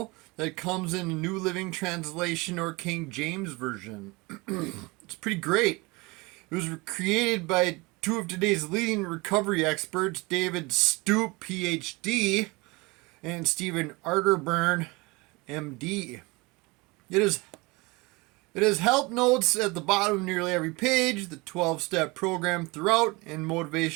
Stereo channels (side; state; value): left; quieter; 24.8 dB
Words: that comes in a New Living Translation or King James Version. It's pretty great. It was created by two of today's leading recovery experts, David Stoop, PhD, and Stephen Arterburn, MD. It has help notes at the bottom of nearly every page, the 12-step program throughout, and